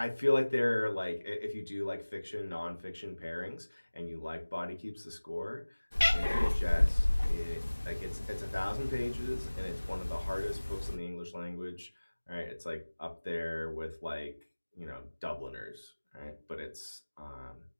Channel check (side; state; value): both; inverted; correlation -1.00